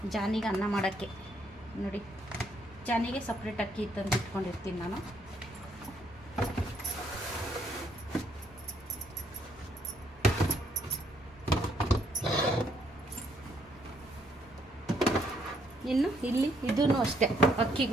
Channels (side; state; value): both; normal; correlation 0.70